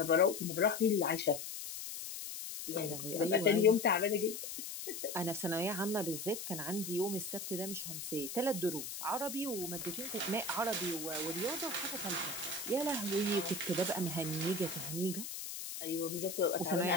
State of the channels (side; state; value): left; noise; hiss, 7 dB below the sound